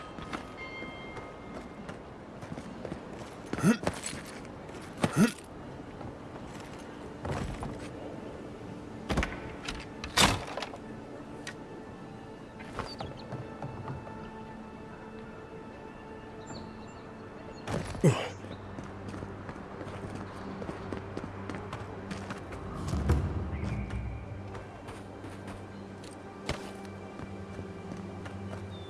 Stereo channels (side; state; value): both; identical; correlation 1.00